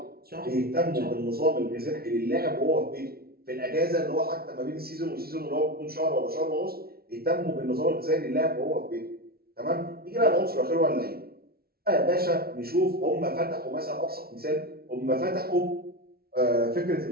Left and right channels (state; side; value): late; left; 0.44 ms